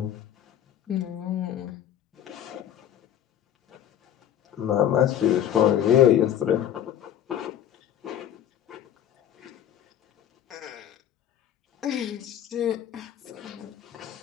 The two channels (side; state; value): right; quieter; 10.4 dB